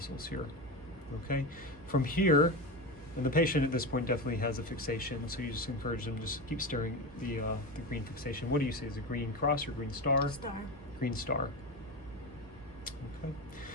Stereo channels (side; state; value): both; normal; correlation 0.21